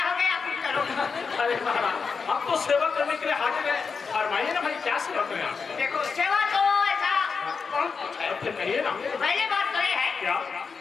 हो गए, आप कुछ करो। अरे महाराज, हम तो सेवा करने के लिए हाजिर हैं। फरमाइए ना भाई, क्या सेवा करें आप? देखो सेवा तो ऐसा बहुत कुछ है। फिर कहिए ना। पहले बात तो ये है क्या?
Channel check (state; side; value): quieter; right; 5.3 dB